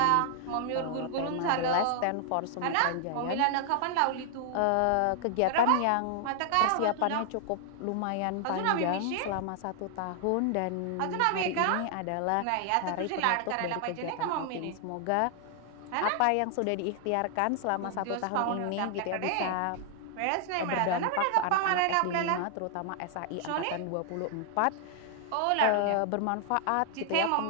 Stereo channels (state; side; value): different; both; correlation 0.00